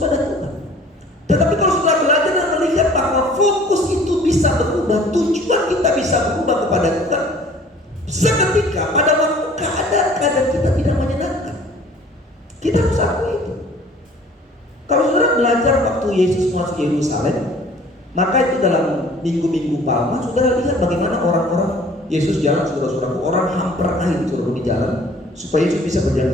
Tuhan. Tetapi kalau sudah belajar dan melihat bahwa fokus itu bisa berubah, tujuan kita bisa berubah kepada Tuhan, seketika pada waktu keadaan-keadaan kita tidak menyenangkan, kita harus akui itu. Kalau saudara belajar waktu Yesus masuk Yerusalem, maka itu dalam minggu-minggu Palma, saudara lihat bagaimana orang-orang Yesus jalan, saudara-saudaraku, orang hamper air saudara di jalan supaya Yesus bisa berjalan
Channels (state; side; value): normal; both; correlation 0.51